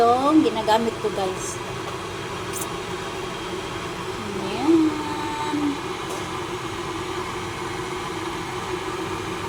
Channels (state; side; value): identical; both; correlation 1.00